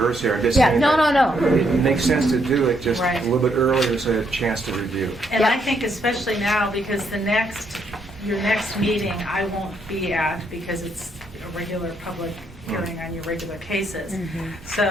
here. I'm just saying no. It makes sense to do it just Right. a little bit earlier so I have a chance to review. And I think especially now, because your next meeting I won't be at because it's a regular public hearing on your regular cases.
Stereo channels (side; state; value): both; normal; correlation 0.74